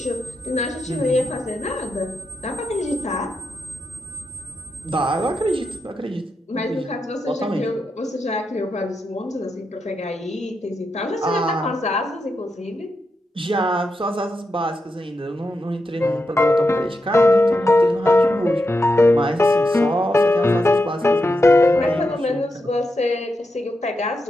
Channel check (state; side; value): normal; both; correlation 0.86